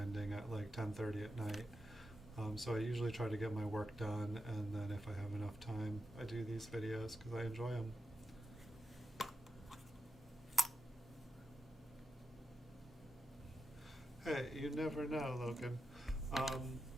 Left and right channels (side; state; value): both; normal; correlation 0.89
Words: at like 10:30 at night. So I usually try to get my work done, and then if I have enough time, I do these videos because I enjoy them. Hey, you never know, Logan.